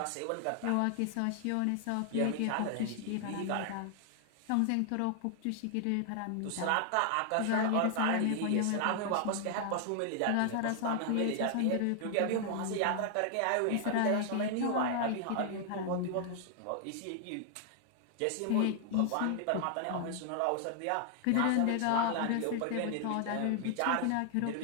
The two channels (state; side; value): different; both; correlation 0.00